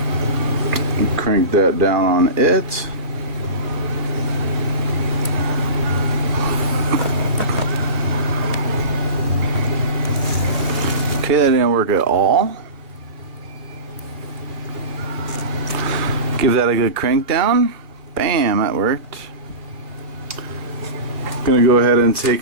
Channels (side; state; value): left; late; 2.4 ms